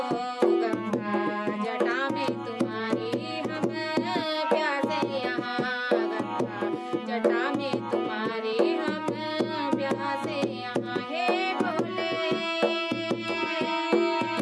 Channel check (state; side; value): identical; both; correlation 1.00